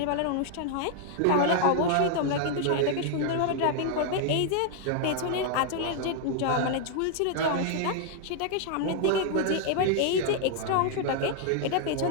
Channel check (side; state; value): both; different; correlation 0.00